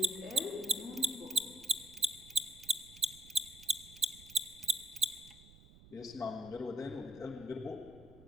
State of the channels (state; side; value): noise; right; rumble, 21 dB below the sound